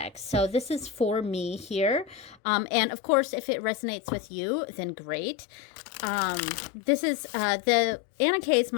So this is for me here. And of course, if it resonates with you, then great. This is the Anna Kay is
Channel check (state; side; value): drops out; right; at 2.4 s